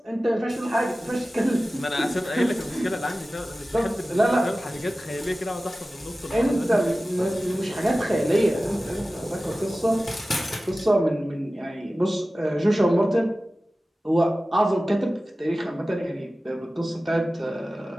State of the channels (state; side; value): normal; both; correlation 0.96